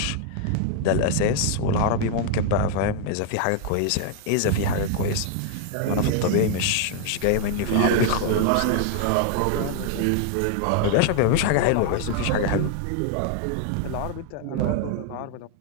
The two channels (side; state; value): both; different; correlation 0.00